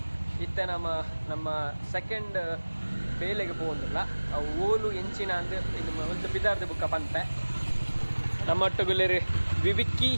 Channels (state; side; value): inverted; both; correlation -1.00